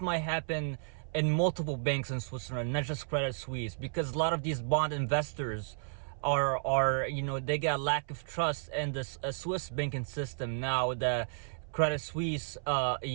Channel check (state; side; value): silent; left; 56 dB below the other